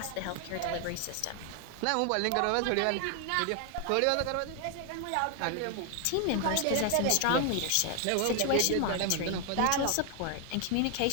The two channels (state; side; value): different; both; correlation 0.00